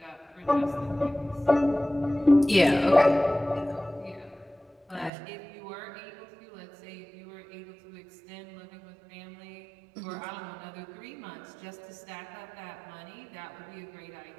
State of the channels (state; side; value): drops out; left; at 5.1 s